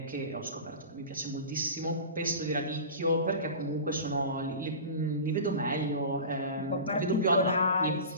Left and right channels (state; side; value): inverted; both; correlation -0.33